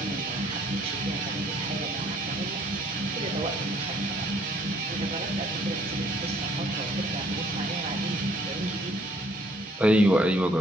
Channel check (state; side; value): normal; both; correlation 0.62